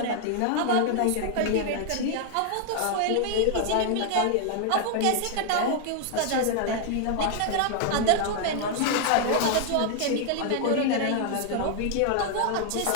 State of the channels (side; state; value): both; different; correlation 0.00